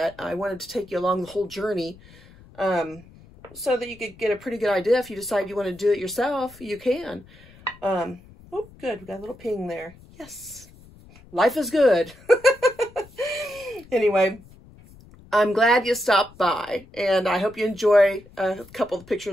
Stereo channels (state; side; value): noise; left; rumble, 23 dB below the sound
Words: I wanted to take you along the whole journey so that you could get a pretty good idea. If you decide you want to do it yourself, you can. Oh, good. We got a little ping there. Yes. Life is good. Anyway, I'm glad you stopped by, and I hope you enjoy a couple of